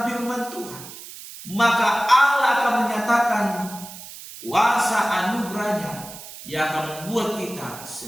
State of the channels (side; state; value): right; noise; hiss, 14 dB below the sound